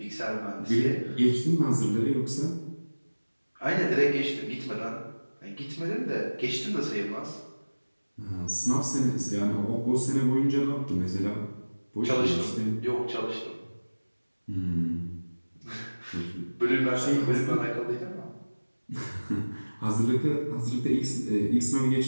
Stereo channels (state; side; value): inverted; both; correlation -1.00